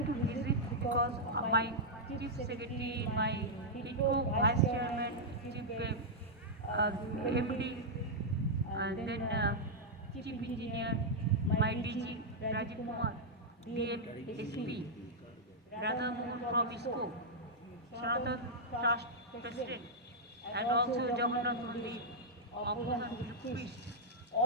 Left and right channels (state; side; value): normal; both; correlation -0.06